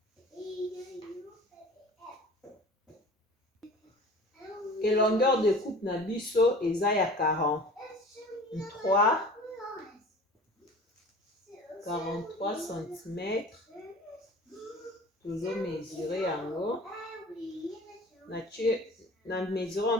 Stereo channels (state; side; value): normal; both; correlation 0.42